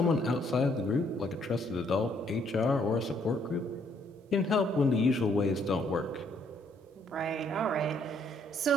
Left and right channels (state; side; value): normal; both; correlation 0.68